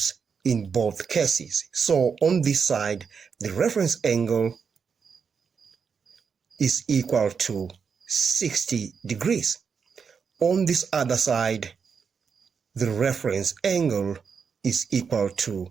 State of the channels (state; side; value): quieter; left; 6.1 dB